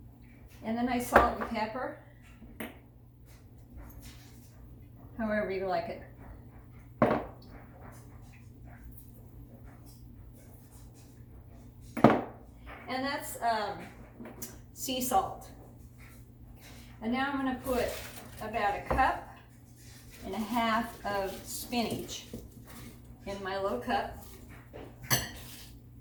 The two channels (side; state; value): both; identical; correlation 1.00